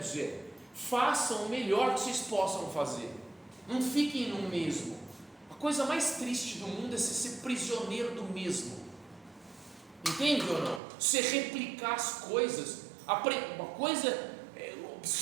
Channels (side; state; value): left; drops out; at 10.8 s